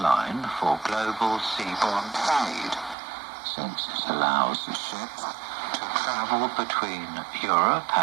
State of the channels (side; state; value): left; drops out; at 3.0 s